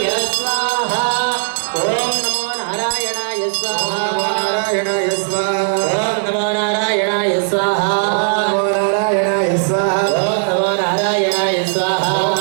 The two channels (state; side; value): silent; left; digital silence